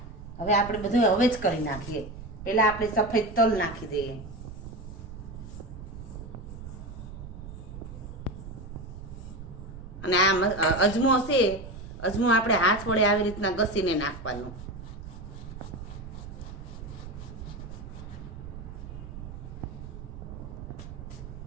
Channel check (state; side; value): noise; right; rumble, 11 dB below the sound